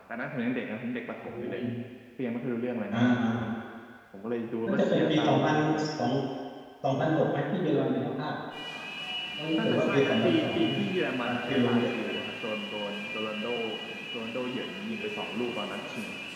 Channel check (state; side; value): identical; both; correlation 1.00